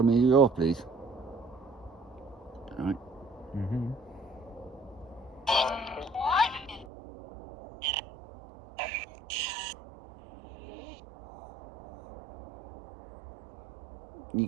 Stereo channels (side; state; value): left; drops out; at 6.9 s